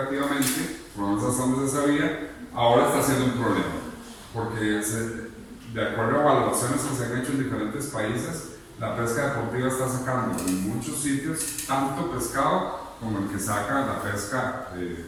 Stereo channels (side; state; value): both; identical; correlation 1.00